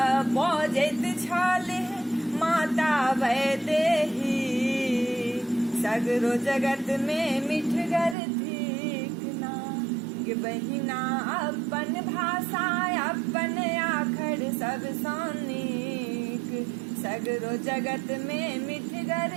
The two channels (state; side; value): drops out; left; at 8.2 s